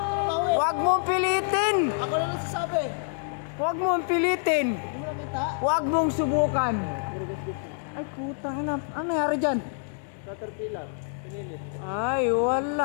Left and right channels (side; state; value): right; silent; digital silence